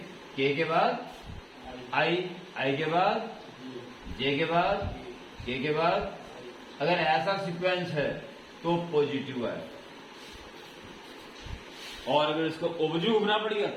के बाद आई के बाद जे के बाद के के बाद। अगर ऐसा सीक्वेंस है तो पॉजिटिव है, और अगर इसको ऑब्जेक्टिव घूमना पड़ेगा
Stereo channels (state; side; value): identical; both; correlation 1.00